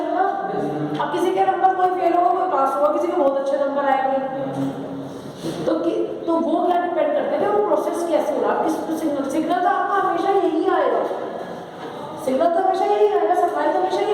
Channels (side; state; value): both; identical; correlation 1.00